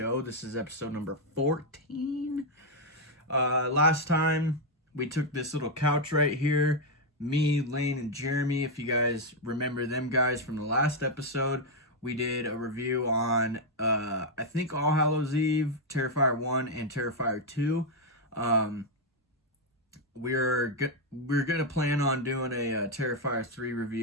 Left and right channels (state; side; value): normal; both; correlation 0.01